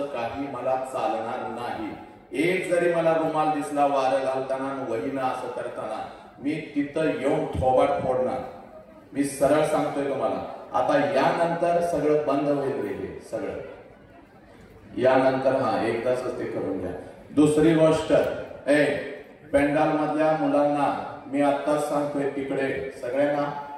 काही मला चालणार नाही. एक जरी मला रुमाल दिसला वारं घालताना वहीनं असं करताना मी तिथं येऊन थोबाड फोडणार. मी सरळ सांगतोय तुम्हाला. आता यानंतर सगळं बंद होईल रे सगळं. यानंतर एकदाच ते करून घ्या. दुसरी गोष्ट, पेंडाल मधल्या मुलांना मी आत्ताच सांगतोय, तिकडे सगळ्यांना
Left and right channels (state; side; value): identical; both; correlation 1.00